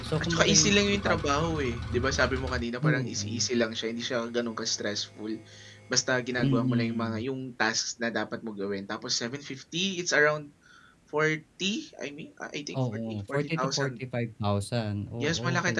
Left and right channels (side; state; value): both; identical; correlation 1.00